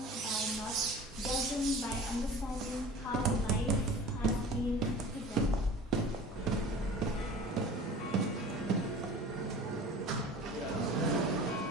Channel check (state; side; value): normal; both; correlation 0.41